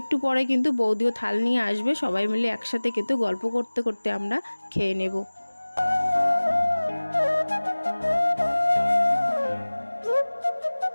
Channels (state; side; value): inverted; both; correlation -1.00